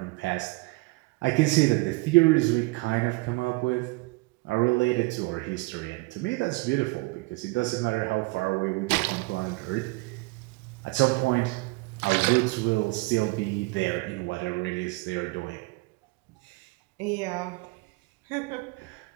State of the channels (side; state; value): left; quieter; 24.2 dB